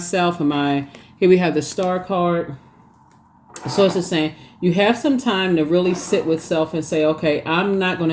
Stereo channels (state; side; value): identical; both; correlation 1.00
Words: Here we have the Star card. So it's just saying, you have some time to really sit with self and say, okay, I'm not going